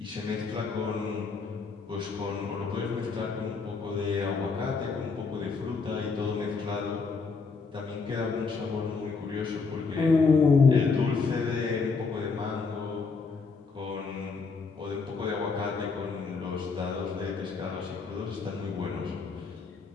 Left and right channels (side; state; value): right; quieter; 4.7 dB